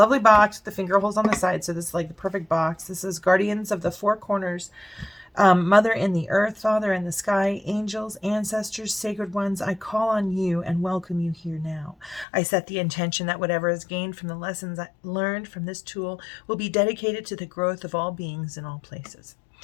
box with the finger holes on the side. So this is like the perfect box. This is Guardians of the Four Corners. Mother in the earth, Father in the sky, angels, ancestors, sacred ones, I call on you and welcome you here now. I set the intention that whatever is gained from the lessons I learned from this tool will be dedicated to the growth of all beings in all places.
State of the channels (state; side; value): drops out; right; at 12.2 s